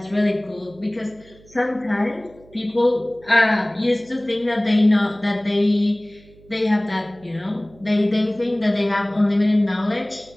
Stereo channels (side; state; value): right; noise; hum, 26 dB below the sound